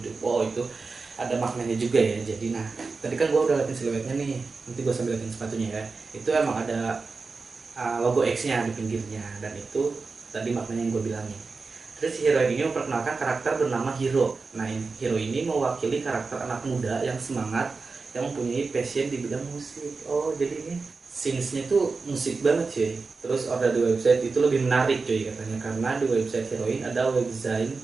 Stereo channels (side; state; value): left; quieter; 4.3 dB